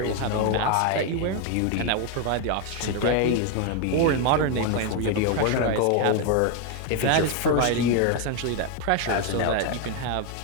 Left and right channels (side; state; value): both; different; correlation 0.01